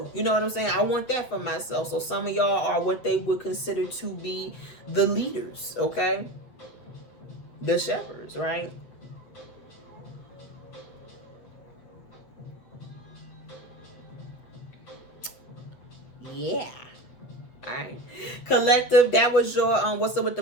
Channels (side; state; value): right; late; 8.3 ms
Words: You know what I'm saying? I want that for myself. So some of y'all are what they would consider to be the leaders, okay? The shepherds, right? Yeah. All right. Collective, that was your What's Up with the